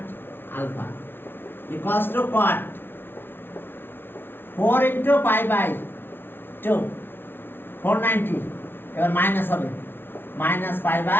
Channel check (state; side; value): late; right; 0.11 ms